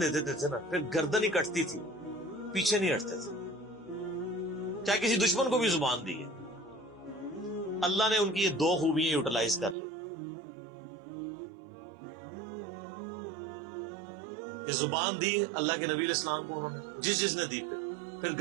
دے دیتے تھے نا، پھر گردن ہی کٹتی تھی، پیچھے نہیں ہٹتے تھے. چاہے کسی دشمن کو بھی زبان دی ہے. اللہ نے ان کی یہ دو خوبیاں یوٹیلائز کر لی کہ زبان دی اللہ کے نبی علیہ السلام کو، انہوں نے جس نے دی، پھر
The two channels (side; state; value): left; drops out; at 9.8 s